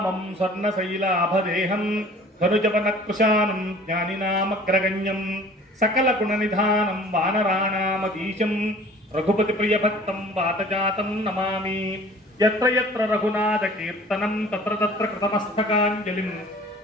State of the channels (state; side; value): normal; both; correlation 0.48